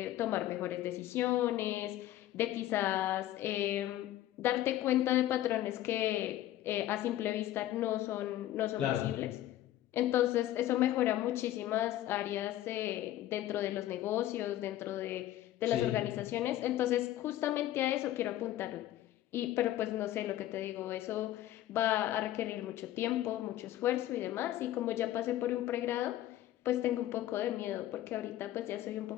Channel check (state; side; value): quieter; right; 13.8 dB